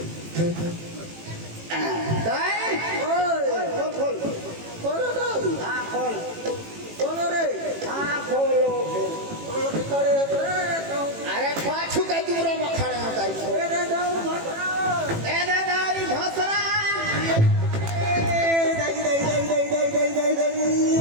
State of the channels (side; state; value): left; late; 18 ms